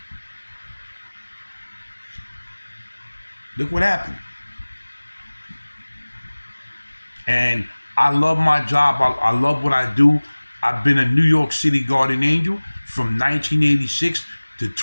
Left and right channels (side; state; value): both; inverted; correlation -1.00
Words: Look what happened. And I love my job. I love what I do. I've been a New York City Guardian Angel from 1986 to